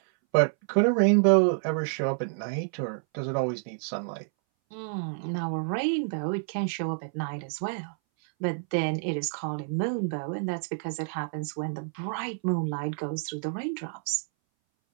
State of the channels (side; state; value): left; silent; 59 dB below the other